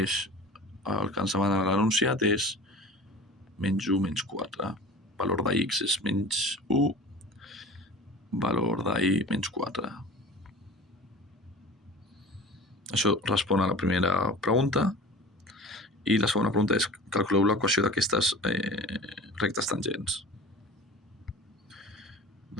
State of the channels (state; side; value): normal; both; correlation 0.38